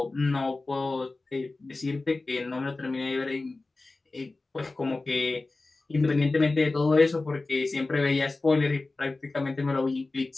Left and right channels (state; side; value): quieter; right; 3.3 dB